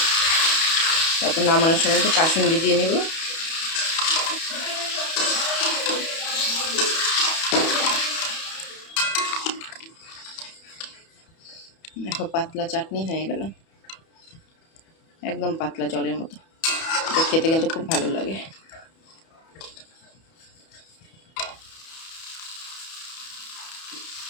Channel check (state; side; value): late; right; 31 ms